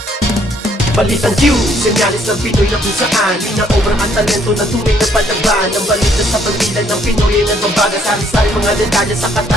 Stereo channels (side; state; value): both; normal; correlation 0.66